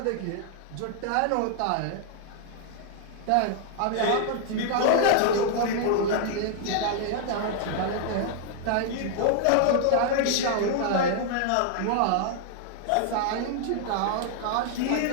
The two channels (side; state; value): both; different; correlation -0.01